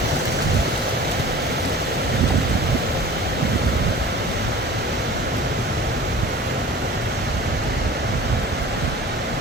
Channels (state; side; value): normal; both; correlation 0.41